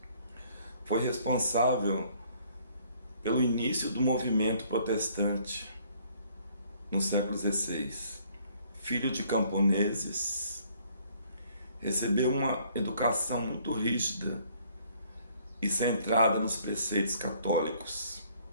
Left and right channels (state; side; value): inverted; both; correlation -0.62